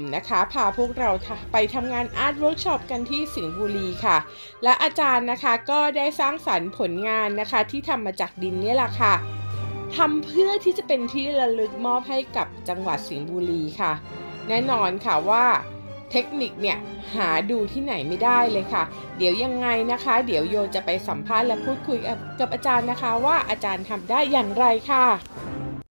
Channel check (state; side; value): inverted; both; correlation -1.00